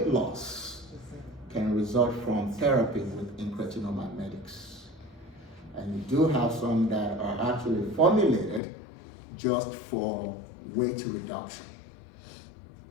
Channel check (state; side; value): drops out; right; at 8.6 s